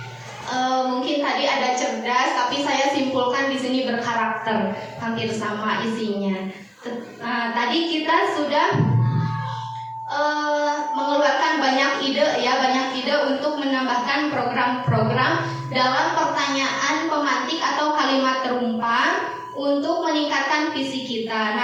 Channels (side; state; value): both; identical; correlation 1.00